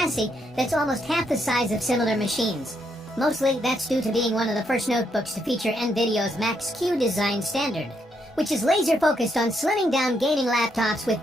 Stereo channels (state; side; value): normal; both; correlation 0.76